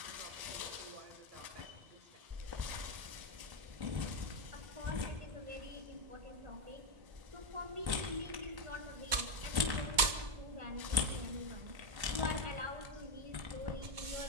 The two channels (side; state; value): left; late; 2.2 ms